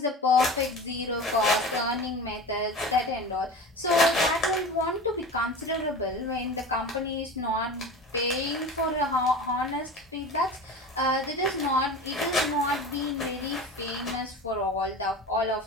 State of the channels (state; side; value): normal; both; correlation 0.33